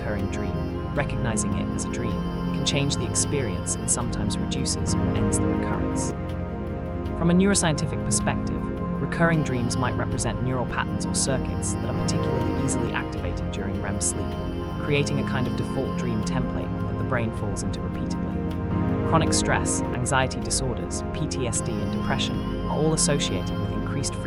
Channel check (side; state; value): both; identical; correlation 1.00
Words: dream, recognizing it as a dream, can change the experience and sometimes reduces or ends the recurrence. From a neuroscientific perspective, recurring dreams might represent neural patterns or circuits that are particularly easily activated during REM sleep, creating a kind of default dream template that the brain falls into repeatedly. Chronic stress, anxiety disorders, PTSD, and depression are all associated with increased